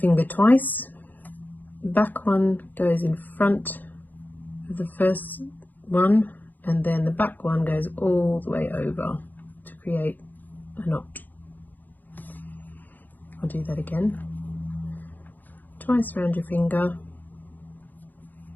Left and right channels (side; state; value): right; late; 0.085 ms